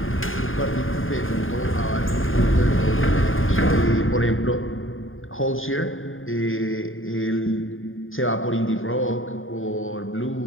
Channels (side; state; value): right; late; 0.59 ms